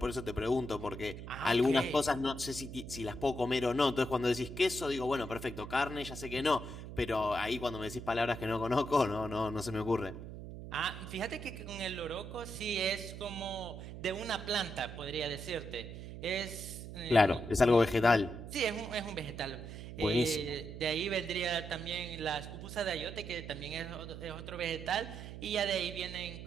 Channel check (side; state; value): right; noise; hum, 10 dB below the sound